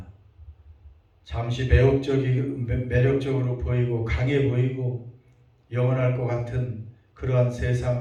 잠시 매력적으로 보이고 강해 보이고 영원할 것 같은 그러한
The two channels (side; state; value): both; identical; correlation 1.00